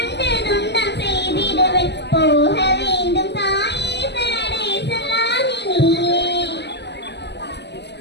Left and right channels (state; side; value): late; right; 0.50 ms